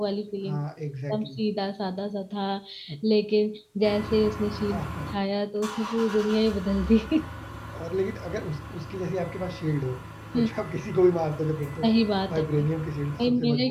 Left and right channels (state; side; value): identical; both; correlation 1.00